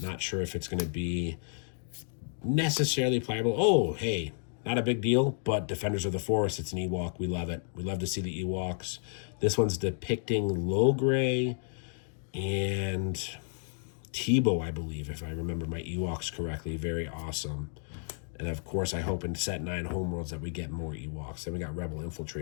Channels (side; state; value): right; silent; 56 dB below the other